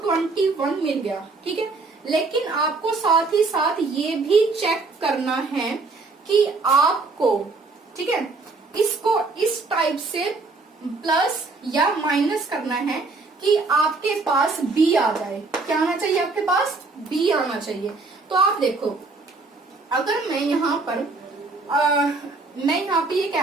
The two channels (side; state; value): left; quieter; 3.8 dB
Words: 21 मिल गया। ठीक है, लेकिन आपको साथ ही साथ ये भी चेक करना है कि आपको, ठीक है, इसको इस टाइप से प्लस या माइनस करना है कि आपके पास b आ जाए। क्या आना चाहिए आपके पास b आना चाहिए। तो आप देखो अगर मैं यहाँ पर ये